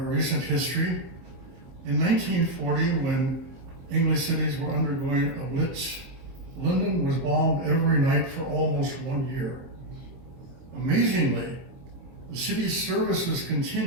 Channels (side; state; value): left; late; 23 ms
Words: history. In 1940, when English cities were undergoing a blitz, London was bombed every night for almost 1 year. Amazingly, the city's services